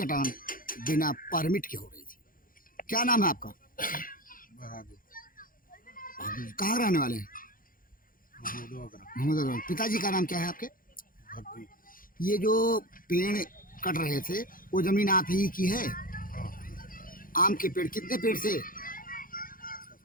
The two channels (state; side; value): late; right; 0.41 ms